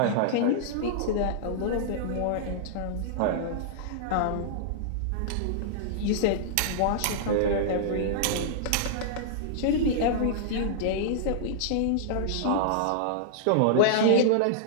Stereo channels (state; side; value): different; both; correlation -0.02